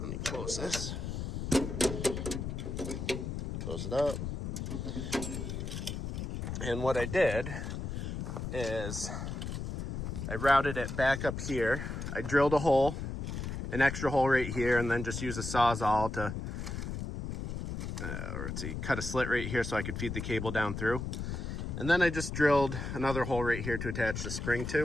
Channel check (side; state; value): left; noise; rumble, 5 dB below the sound